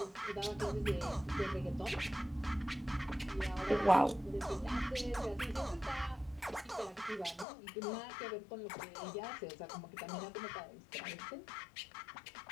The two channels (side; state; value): right; drops out; at 7.5 s